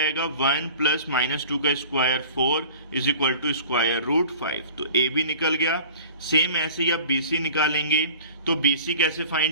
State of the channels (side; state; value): both; inverted; correlation -0.44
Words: 1 प्लस माइनस 2 का square 4 is equal to square root 5। तो ए भी निकल गया। सेम ऐसे ही आप बी सी निकालेंगे। तो बी सी कैसे